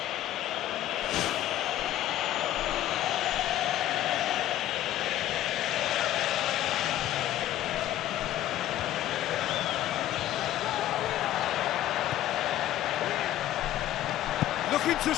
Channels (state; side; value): quieter; right; 13.1 dB